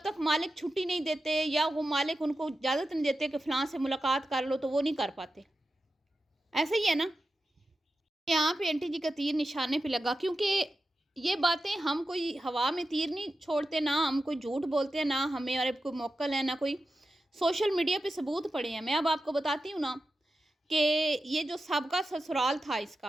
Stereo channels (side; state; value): both; normal; correlation 0.92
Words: تک مالک چھٹی نہیں دیتے یا وہ مالک ان کو اجازت نہیں دیتے کہ فلاں سے ملاقات کر لو، تو وہ نہیں کر پاتے۔ ایسا ہی ہے نا، یہاں پہ انٹی جی کا تیر نشانے پہ لگا، کیونکہ یہ باتیں ہم کوئی ہوا میں تیر نہیں چھوڑتے، نہ ہم کوئی جھوٹ بولتے ہیں، نہ ہمیں اور کوئی موکل ہے، نہ کوئی سوشل میڈیا پہ ثبوت پڑے ہیں۔ میں اب آپ کو بتاتی ہوں نا کہ یہ جو سابقہ سسرال تھا اس